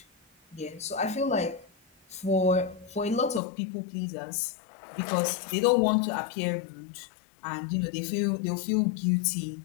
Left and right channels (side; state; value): right; drops out; at 3.4 s